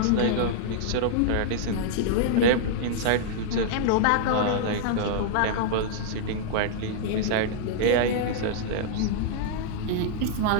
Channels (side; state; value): both; different; correlation -0.01